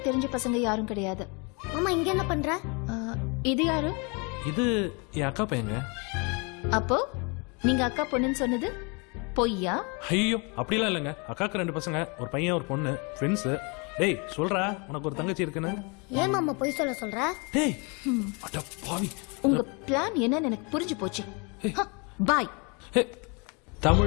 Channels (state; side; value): quieter; right; 31.7 dB